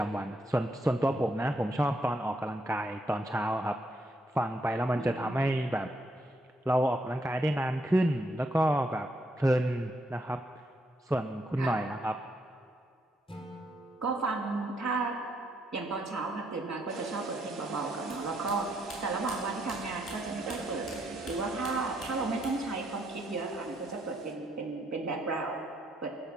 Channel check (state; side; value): normal; both; correlation 0.75